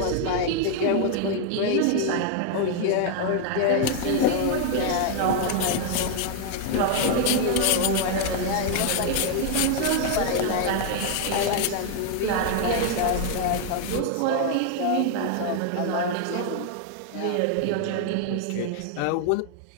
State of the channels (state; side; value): different; both; correlation 0.00